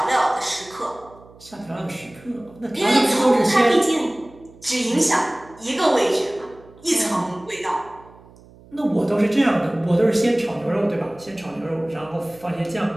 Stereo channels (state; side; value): noise; right; hum, 24 dB below the sound